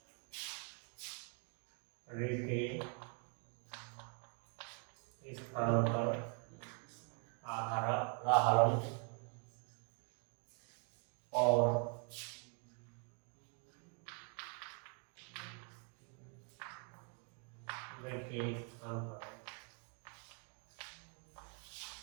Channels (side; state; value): left; quieter; 39.7 dB